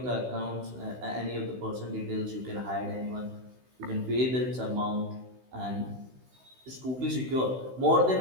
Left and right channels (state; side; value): late; left; 16 ms